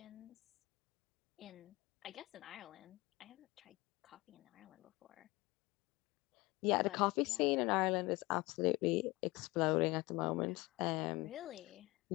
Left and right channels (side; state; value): right; quieter; 22.3 dB